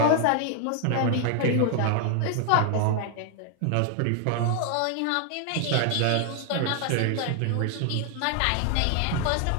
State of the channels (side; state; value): both; different; correlation 0.00